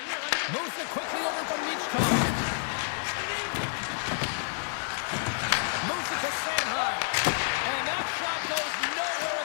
Moves it quickly over to Michkov. Moves it to Sanheim. And that shot goes nowhere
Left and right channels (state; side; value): silent; right; digital silence